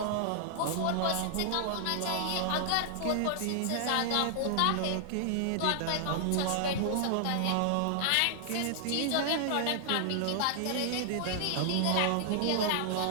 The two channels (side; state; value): both; different; correlation -0.01